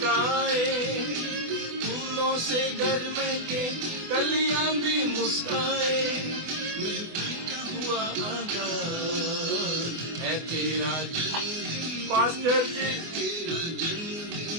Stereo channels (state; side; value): late; left; 24 ms